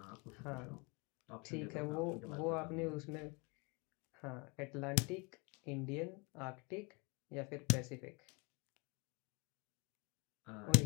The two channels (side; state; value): right; quieter; 30.4 dB